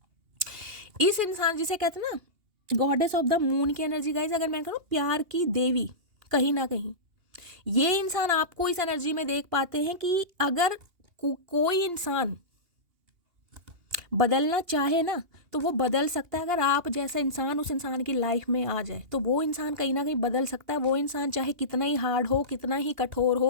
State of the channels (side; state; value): left; late; 2.8 ms